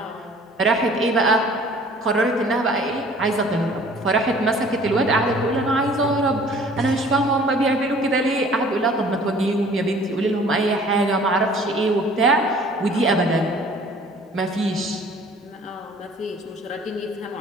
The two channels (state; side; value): normal; both; correlation 0.51